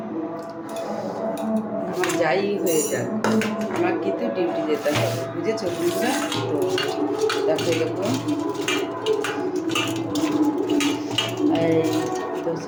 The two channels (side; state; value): both; identical; correlation 1.00